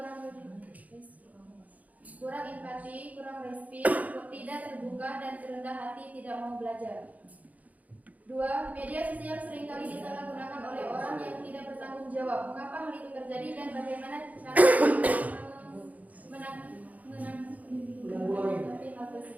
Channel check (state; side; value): late; left; 0.075 ms